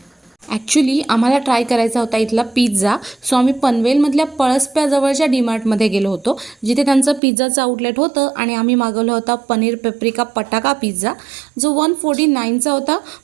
ॲक्च्युली आम्हाला ट्राय करायचा होता इथला पिझ्झा, सो आम्ही पनवेलमधल्या पळसप्याजवळच्या डीमार्टमध्ये गेलो होतो, जिथे त्यांचं पिझ्झाचं आउटलेट होतं आणि आम्ही मागवला होता पनीर पेप्रिका पटाका पिझ्झा, जो 149चा होता.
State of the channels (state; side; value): drops out; left; at 7.2 s